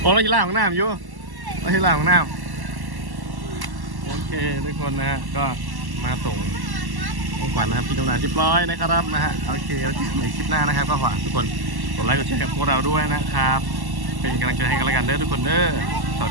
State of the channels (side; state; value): left; late; 1.1 ms